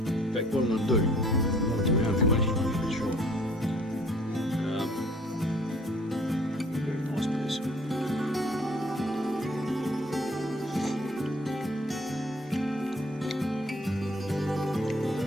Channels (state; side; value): normal; both; correlation 0.56